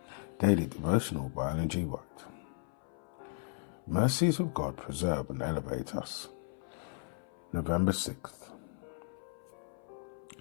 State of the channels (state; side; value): silent; right; 54 dB below the other